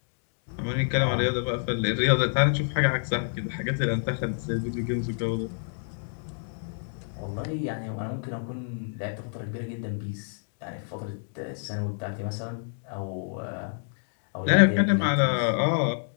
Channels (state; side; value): silent; right; digital silence